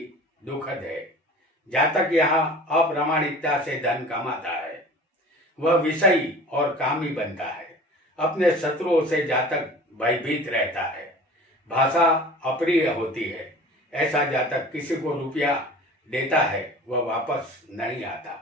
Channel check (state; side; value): normal; both; correlation 0.42